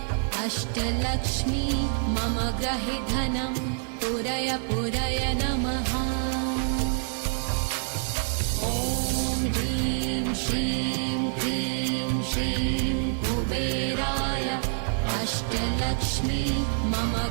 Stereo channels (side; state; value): left; silent; 60 dB below the other